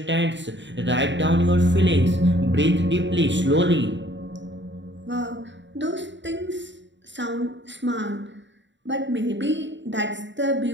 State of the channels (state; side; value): late; left; 0.53 ms